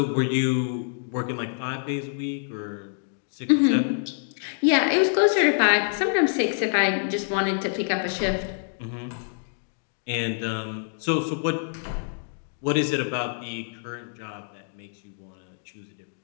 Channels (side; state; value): right; silent; digital silence